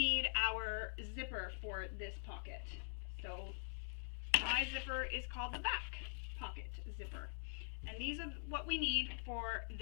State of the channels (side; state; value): right; silent; digital silence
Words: our zipper for this pocket. So my zipper is called the back pocket zipper, and these are what we need for